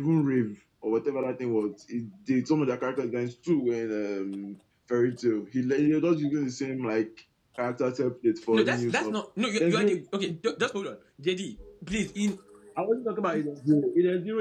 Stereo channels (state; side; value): identical; both; correlation 1.00